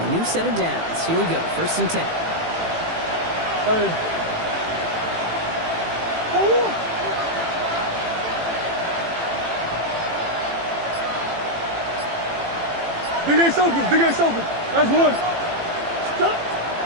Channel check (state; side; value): late; left; 18 ms